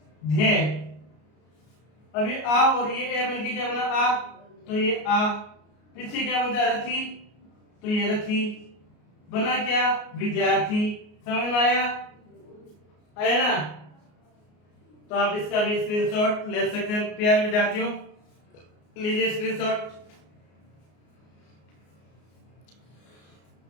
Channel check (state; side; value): late; right; 33 ms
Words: ध्य। अभी आ और ये ए मिलके क्या बना? आ। तो ये आ। पीछे क्या बनता है? रथी। तो ये रथी बना। क्या? विद्यार्थी। समझ में आया? आया ना? तो आप इसका भी स्क्रीनशॉट ले सकते हैं प्यारे विद्यार्थियों। लीजिए स्क्रीनशॉट।